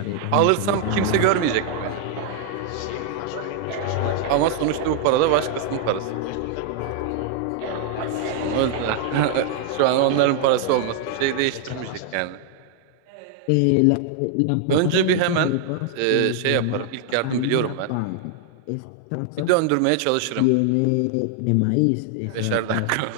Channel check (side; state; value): both; different; correlation 0.00